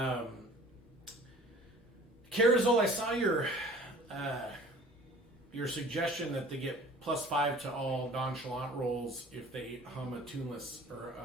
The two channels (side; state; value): both; normal; correlation 0.47